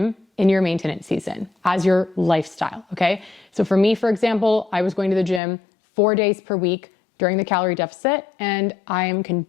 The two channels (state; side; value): drops out; right; at 5.4 s